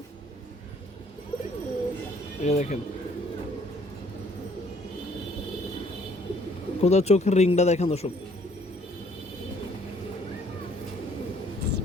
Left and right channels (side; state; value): both; normal; correlation 0.62